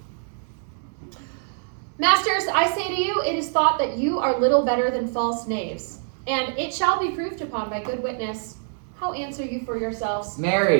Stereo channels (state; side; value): silent; left; 59 dB below the other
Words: Masters, I say to you, it is thought that you are little better than false knaves, and it shall be proved upon by good witness. How answer you for yourselves?